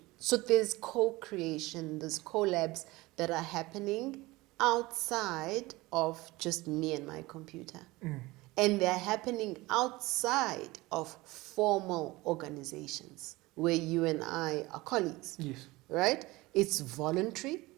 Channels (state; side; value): quieter; left; 20.8 dB